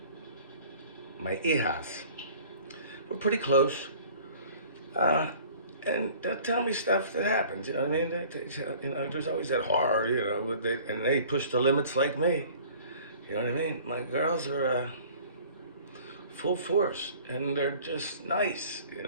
my hijas, we're pretty close. Uh, and they'll tell me stuff that happens. You know what I mean? There's always that horror. And they push the limits like me. You know what I mean? My girls are full force, and they're just nice. You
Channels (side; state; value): both; inverted; correlation -0.49